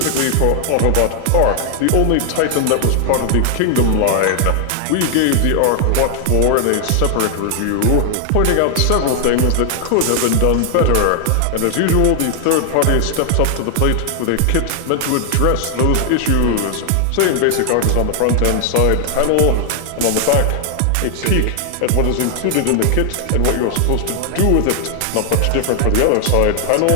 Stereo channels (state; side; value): different; both; correlation 0.00